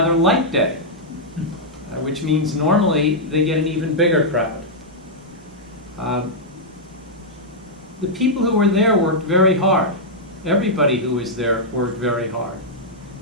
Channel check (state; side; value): normal; both; correlation -0.07